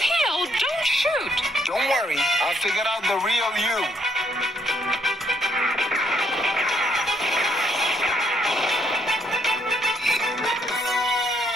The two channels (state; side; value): normal; both; correlation 0.71